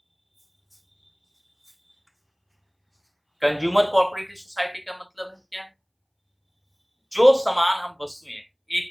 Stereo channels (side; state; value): both; identical; correlation 1.00